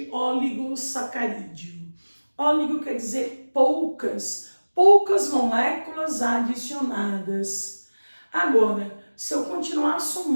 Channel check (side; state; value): both; inverted; correlation -1.00